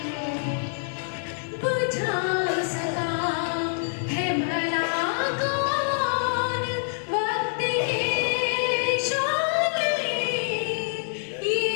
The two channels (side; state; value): right; silent; 61 dB below the other